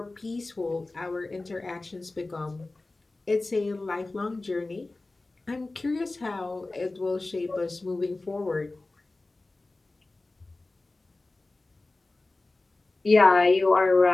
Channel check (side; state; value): right; quieter; 3.1 dB